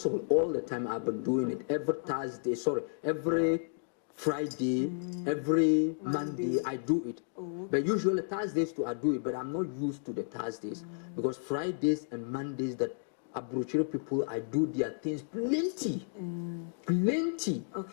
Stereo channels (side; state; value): right; silent; digital silence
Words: all the time. I've been doing it every Friday, every Monday I do it. But usually Thursdays too I do it, but I'm not used to the Thursdays because Fridays and Mondays that Abrochiro people, I do their things plenty.